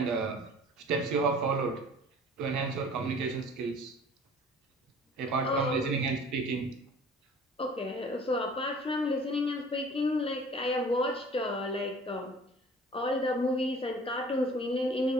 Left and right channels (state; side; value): normal; both; correlation 0.48